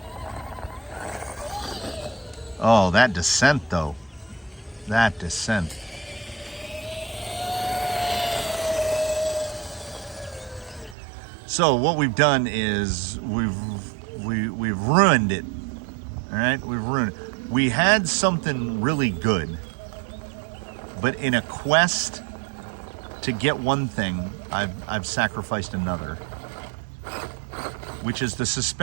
Oh, that descent though. That descent. So what we've done is we've ruined it. All right, we've ruined it. We had something really good, but in a quest to get one thing, I've sacrificed another, which is the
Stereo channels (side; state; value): left; drops out; at 11.0 s